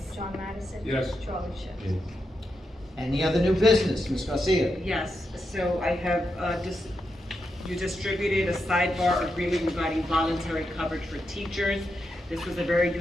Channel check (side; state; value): both; normal; correlation 0.85